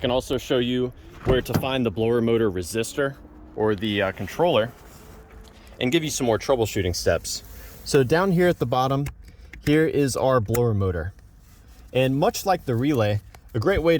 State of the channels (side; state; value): both; identical; correlation 1.00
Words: also show you where to find the blower motor resistor or the controller, and give you some more troubleshooting steps. So down here at the bottom, here is our blower motor. And much like the relay, a great way